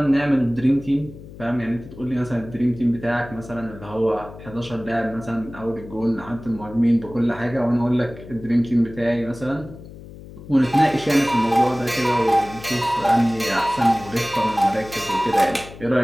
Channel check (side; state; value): left; noise; hum, 16 dB below the sound